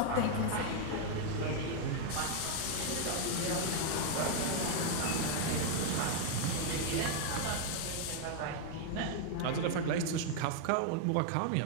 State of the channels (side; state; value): both; different; correlation 0.00